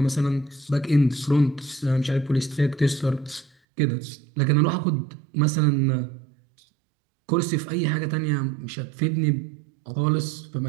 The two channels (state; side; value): drops out; left; at 3.5 s